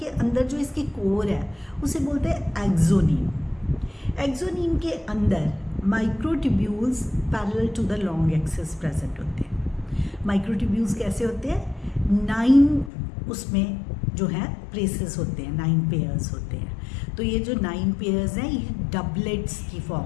अंदर जो इसकी कोर है उसे बोलते हैं एक्सोनीम। एक्सोनीम के अंदर microtubules parallel to the long axis present होते हैं। माइक्रोट्यूब्यूल्स कैसे होते हैं, 9 उसमें जो है प्लेसेस होते हैं, 9 पेयर्स होते हैं। तो ये जो 9 पेयर्स हैं ये डबलेट्स की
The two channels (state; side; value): drops out; right; at 12.9 s